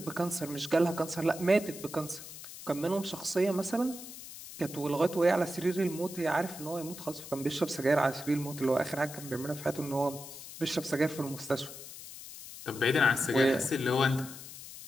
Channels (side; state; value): left; noise; hiss, 13 dB below the sound